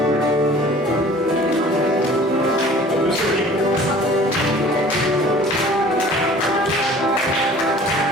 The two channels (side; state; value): both; normal; correlation 0.48